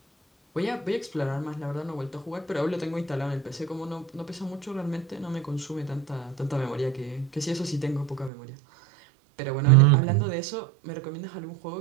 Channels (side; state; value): left; drops out; at 8.3 s